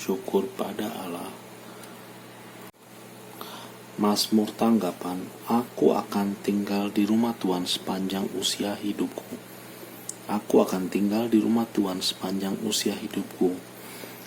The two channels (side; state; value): both; identical; correlation 1.00